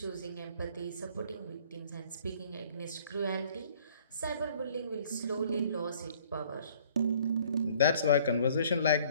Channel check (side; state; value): both; inverted; correlation -0.57